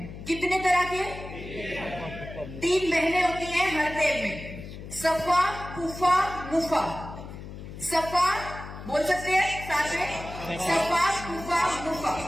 कितने तरह के? 3 बहनें होती हैं हर तेल में, सफा, कुफा, मुफा। सफा बोल सकते हैं साथ में, सफा, कुफा, मुफा।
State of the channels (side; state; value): left; noise; hum, 12 dB below the sound